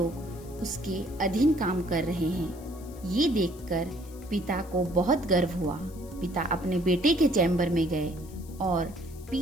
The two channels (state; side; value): noise; left; hiss, 22 dB below the sound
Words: उसके अधीन काम कर रहे हैं। ये देखकर पिता को बहुत गर्व हुआ। पिता अपने बेटे के चैम्बर में गए और